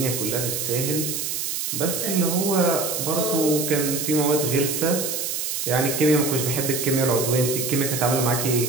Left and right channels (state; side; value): noise; right; hiss, 2 dB below the sound